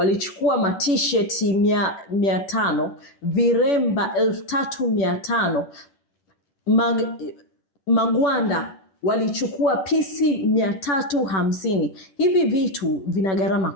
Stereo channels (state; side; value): late; right; 10 ms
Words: t-shirt 500, viremba 3500, magwanda walichukua pisi 350. Hivi vitu vina gharama